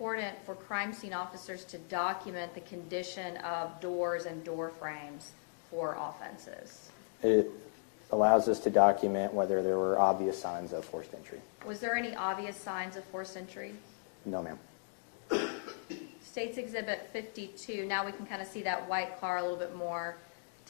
for crime scene officers to document the condition of doors and door frames for offenses? It allows us to document whether there were obvious signs of forced entry. Was there any obvious signs of forced entry? No, ma'am. State's Exhibit 52, now we can kind of see that white car a little bit more.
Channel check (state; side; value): silent; right; digital silence